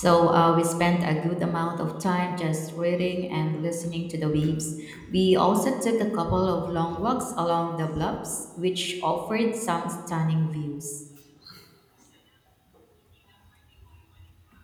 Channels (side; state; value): both; identical; correlation 1.00